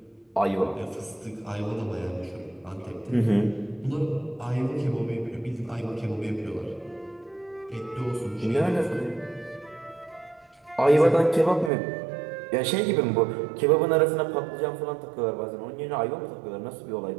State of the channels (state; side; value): drops out; left; at 11.7 s